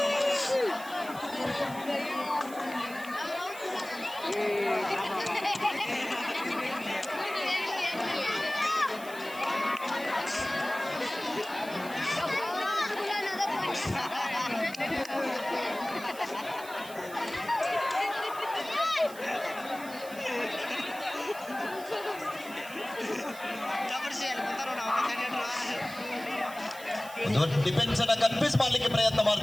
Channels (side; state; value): right; noise; hiss, 16 dB below the sound